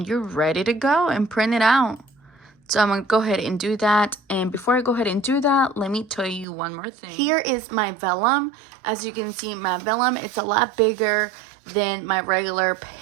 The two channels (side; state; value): left; drops out; at 6.5 s